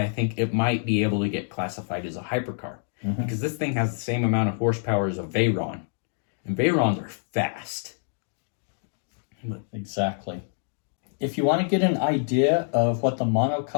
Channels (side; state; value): right; silent; digital silence